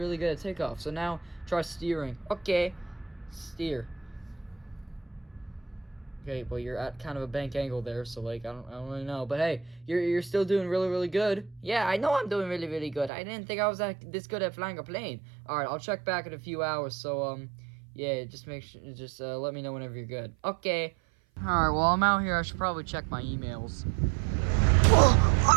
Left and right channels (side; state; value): left; drops out; at 13.1 s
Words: good at takeoff. So now try steering. Okay, steer. Okay, well, you're at kind of a bank angle there, so like I don't really know, but hey, you're still doing really, really good. Yeah, I know I'm doing really, really good. I didn't think I was this good at flying a plane. All right, I'll check back in a few hours. So yeah, just let me know whenever you're good. Okay. All right, well, I'm out here. I should probably check my emails.